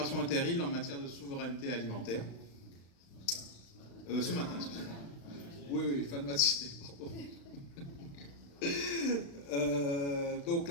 inter-îles en matière de souveraineté alimentaire. Ce matin, excusez-moi. Oui, fin de matinée, pardon. Donc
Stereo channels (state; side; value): late; right; 36 ms